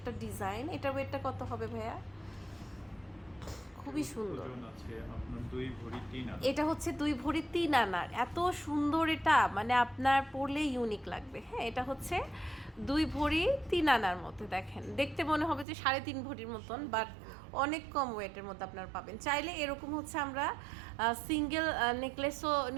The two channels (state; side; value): drops out; left; at 15.7 s